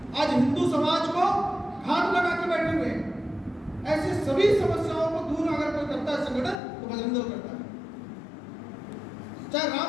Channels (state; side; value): drops out; right; at 6.6 s